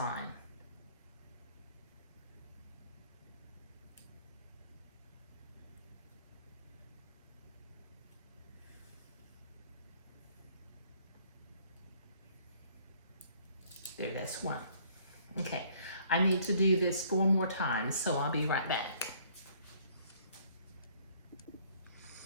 There, that's one. Okay, I need to do this 4 more times, so I'll be right back.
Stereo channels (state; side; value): inverted; both; correlation -0.61